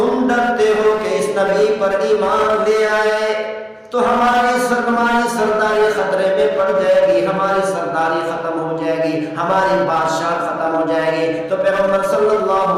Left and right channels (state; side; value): identical; both; correlation 1.00